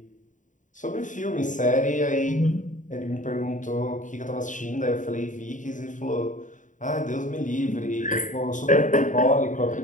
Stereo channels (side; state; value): right; late; 0.37 ms